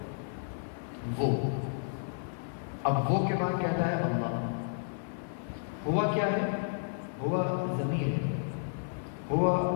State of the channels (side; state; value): right; silent; digital silence